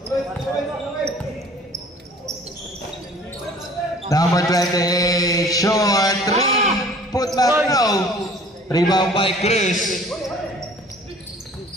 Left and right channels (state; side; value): normal; both; correlation 0.50